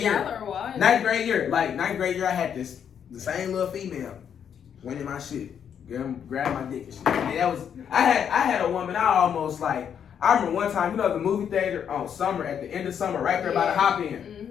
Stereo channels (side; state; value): right; quieter; 8.3 dB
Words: Y'all are wild. 9th grade year. Like, 9th grade year, I had the same little female went in my shit, grab my dick and shit. And that was, I had a woman, I remember one time, you know, the movie theater on Summer, at the end of Summer, right there by the Hop